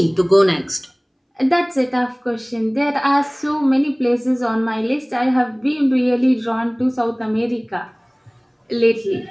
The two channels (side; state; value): both; identical; correlation 1.00